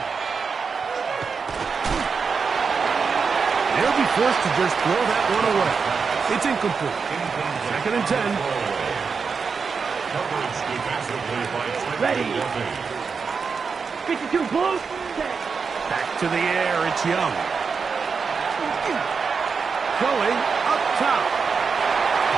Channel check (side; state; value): left; quieter; 5.4 dB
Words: They'll be forced to just throw that one away. It's incomplete. 2nd and 10. Coverage defensively by Trent. Ready. 52 close. Back to the air, it's Young. Going up top.